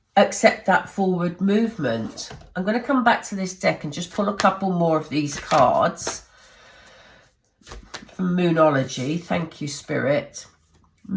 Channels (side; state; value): both; identical; correlation 1.00